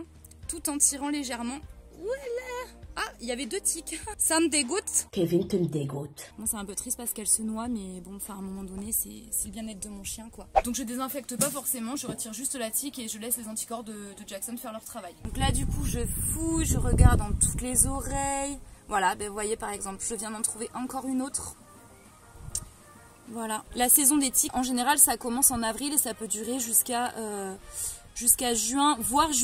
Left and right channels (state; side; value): identical; both; correlation 1.00